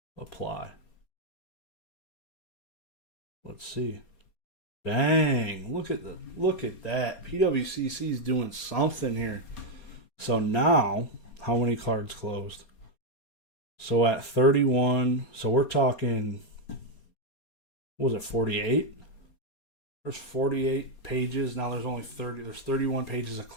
Apply. Let's see. Dang, look at that. PWCC is doing something here. So now, how many cards closed? So at 31, so we're talking, what was it, 48? There's 48 pages. Now there's only 30. There's 31 pages of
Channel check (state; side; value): late; right; 4.2 ms